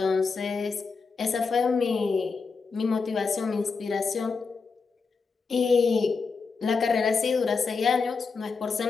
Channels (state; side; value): quieter; right; 4.8 dB